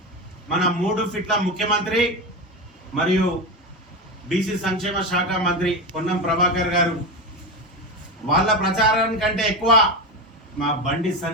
మన 3 ఫీట్ల ముఖ్యమంత్రి మరియు బీసీ సంక్షేమ శాఖ మంత్రి పొన్నం ప్రభాకర్ గారు వాళ్ళ ప్రచారం కంటే ఎక్కువ మా బండి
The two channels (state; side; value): normal; both; correlation 0.18